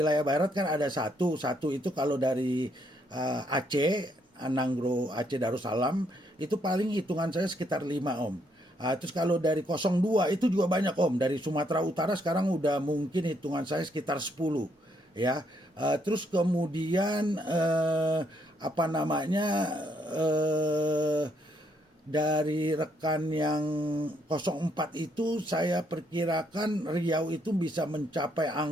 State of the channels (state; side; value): normal; both; correlation 0.73